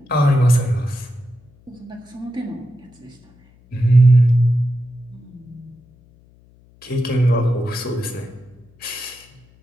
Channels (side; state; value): left; noise; hum, 29 dB below the sound